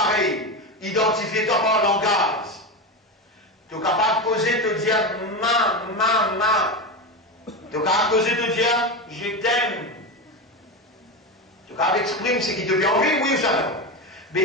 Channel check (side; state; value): both; normal; correlation 0.18